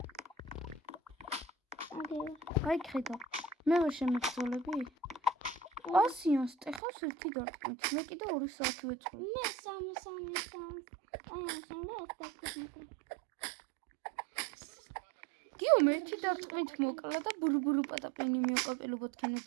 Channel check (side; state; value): left; drops out; at 6.8 s